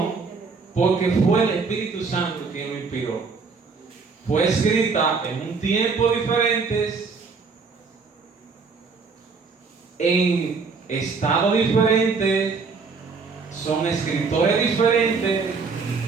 porque fue el Espíritu Santo quien lo inspiró. Fue escrita en un tiempo diferente, en estado diferente, son escritores diferentes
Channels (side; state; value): left; quieter; 4.8 dB